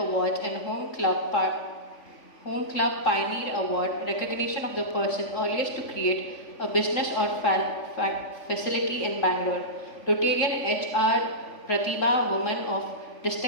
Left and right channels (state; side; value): late; right; 3.5 ms